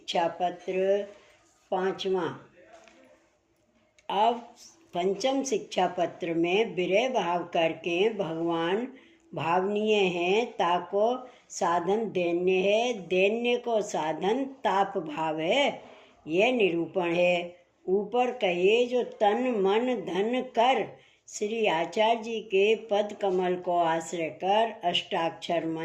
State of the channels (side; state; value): both; identical; correlation 1.00